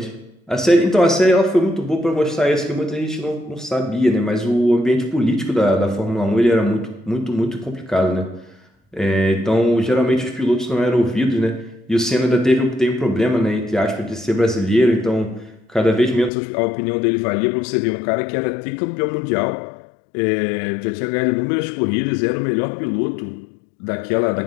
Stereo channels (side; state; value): right; drops out; at 16.3 s